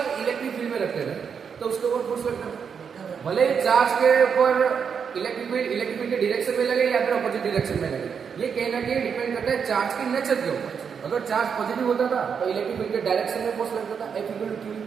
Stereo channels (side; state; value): left; quieter; 6.7 dB